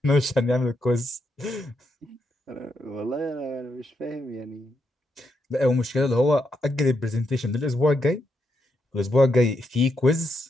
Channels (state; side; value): normal; both; correlation 0.80